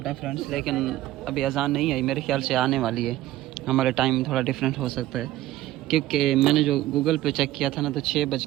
है फ्रेंड्स, लेकिन अभी अज़ान नहीं आई, मेरे ख्याल से आने वाली है। हमारे टाइम थोड़ा डिफरेंट हो सकता है, क्योंकि मैंने जो गूगल पे चेक किया था ना, तो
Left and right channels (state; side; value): quieter; left; 15.3 dB